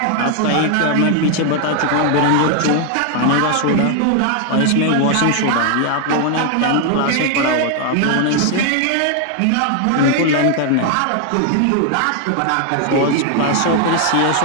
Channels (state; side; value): different; both; correlation 0.00